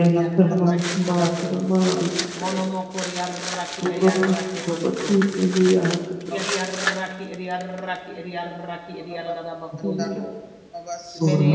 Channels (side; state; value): both; identical; correlation 1.00